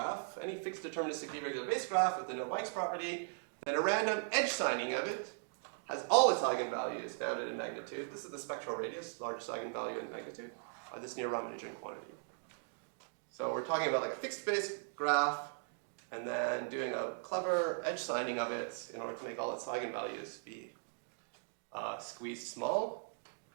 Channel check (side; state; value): left; silent; digital silence